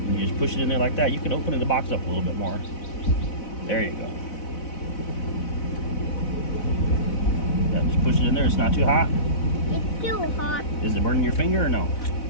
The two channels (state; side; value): late; right; 4.0 ms